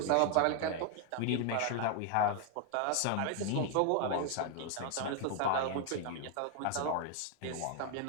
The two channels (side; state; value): both; different; correlation 0.01